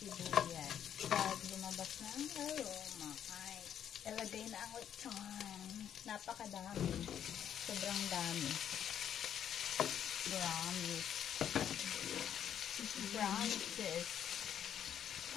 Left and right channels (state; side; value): quieter; right; 9.4 dB